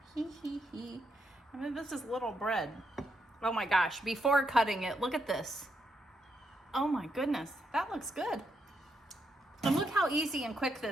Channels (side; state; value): both; normal; correlation 0.80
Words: Hee hee hee. I mean, this is little bread. Oh my gosh, before cutting it, look at this. Oh my goodness, that looks good. And look how easy and quick